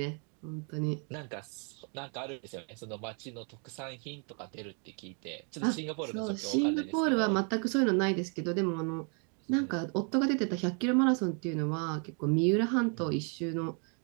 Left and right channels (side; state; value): left; quieter; 39.5 dB